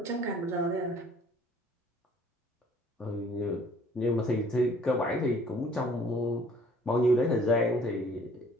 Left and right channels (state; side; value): normal; both; correlation 0.56